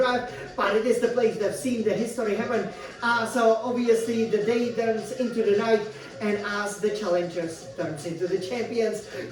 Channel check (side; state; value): both; identical; correlation 1.00